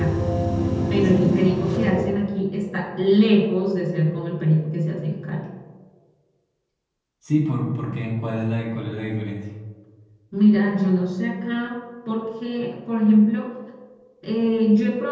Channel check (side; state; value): both; identical; correlation 1.00